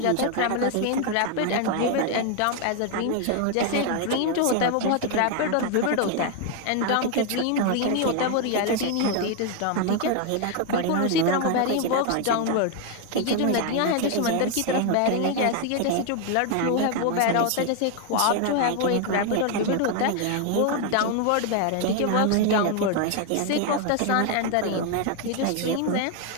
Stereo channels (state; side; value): different; both; correlation 0.01